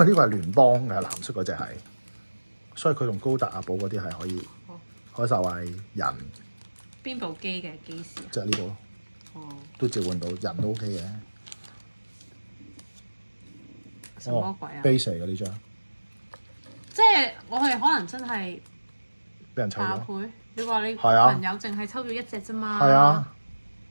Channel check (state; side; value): inverted; both; correlation -1.00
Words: 呢個係聯邦嘅藍色嗰隻係，所以佢同高達阿寶嗰啲係可以開晒係人。邊部機嘅機師啊？就係呢部咯。都召喚到人都 OK 嘅。什麼鬼啊？base 嚟嘅呢張，即係我係可能真係俾人抽爆咗。倍。你話你係啊朋友淨係抽咗一隻啫嘛？係啊，